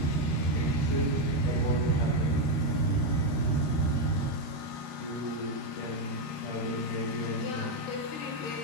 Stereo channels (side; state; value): right; late; 13 ms